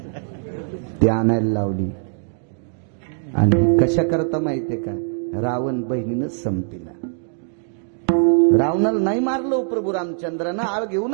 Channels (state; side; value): silent; left; 60 dB below the other